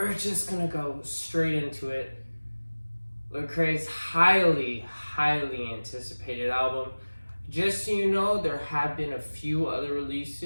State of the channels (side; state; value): both; inverted; correlation -1.00